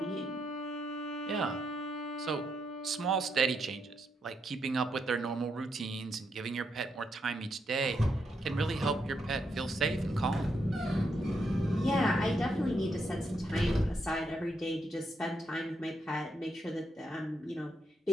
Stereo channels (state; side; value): normal; both; correlation 0.80